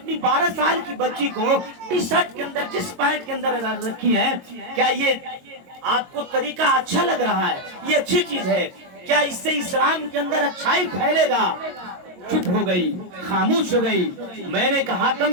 12 سال کی بچی کو ٹی شرٹ کے اندر جس پینٹ کے اندر رکھی ہے، کیا یہ آپ کو طریقہ اچھا لگ رہا ہے؟ یہ اچھی چیز ہے کیا؟ اس سے اسلام کے اندر اچھائی پھیلے گا؟ چپ ہو گئی، خاموش ہو گئی۔ میں نے کہا کم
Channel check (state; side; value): late; left; 22 ms